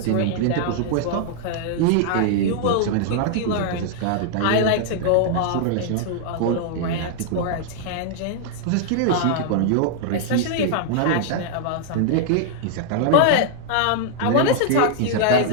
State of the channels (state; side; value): different; both; correlation -0.01